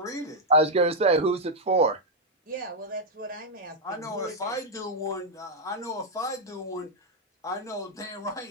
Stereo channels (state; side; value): normal; both; correlation -0.02